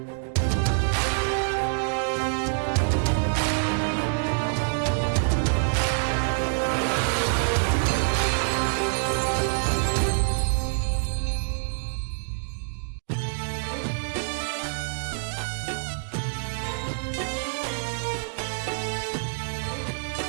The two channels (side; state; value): left; silent; digital silence